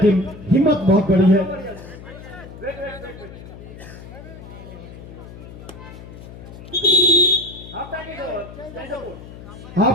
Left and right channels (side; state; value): left; noise; hum, 15 dB below the sound